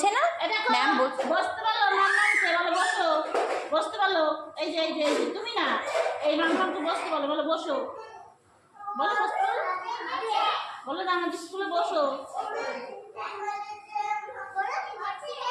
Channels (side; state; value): both; identical; correlation 1.00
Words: না, ম্যাম বলছে। বসতে পারলো, ম্যাম বলছে বলো বসো, বসতে পারলো। এই যে তুমি না, এই ম্যামকে বসতে বলো, বলো বসো, বলো বসতে পারলো, বলো না আমাদের স্কুলে বসো।